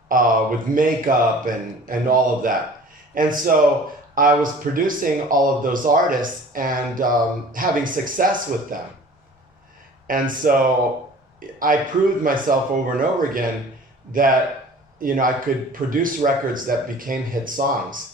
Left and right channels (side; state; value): both; normal; correlation 0.46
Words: with makeup and all of that. And so I was producing all of those artists and having success with them. And so I proved myself over and over again that, I could produce records that became hit songs.